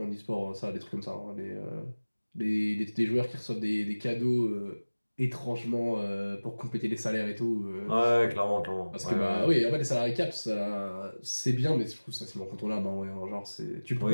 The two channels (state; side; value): inverted; both; correlation -1.00